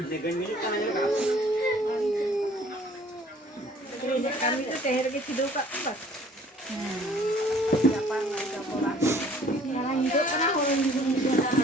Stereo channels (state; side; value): normal; both; correlation 0.55